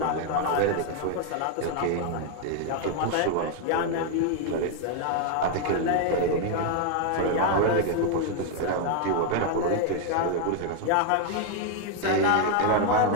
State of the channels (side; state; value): both; different; correlation 0.00